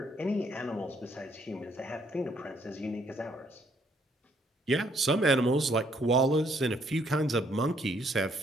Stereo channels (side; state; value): both; normal; correlation 0.68